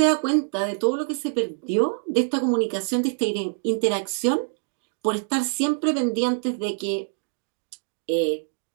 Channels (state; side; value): silent; left; digital silence